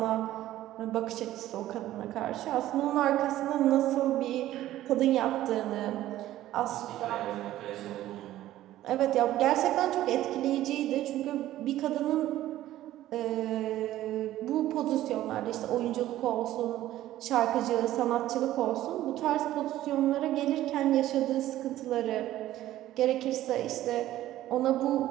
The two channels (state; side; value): quieter; left; 14.2 dB